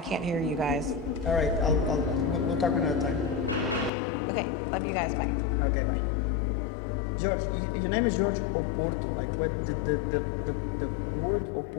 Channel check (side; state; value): right; drops out; at 3.9 s